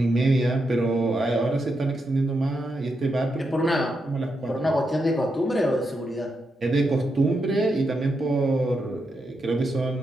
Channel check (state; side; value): normal; both; correlation 0.84